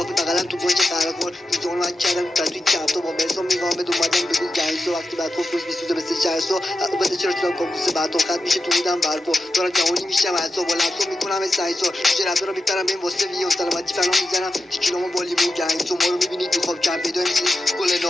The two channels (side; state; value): both; normal; correlation 0.90